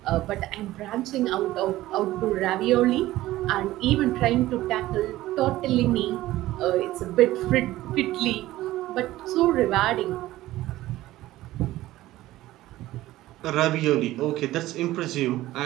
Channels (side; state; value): left; quieter; 16.1 dB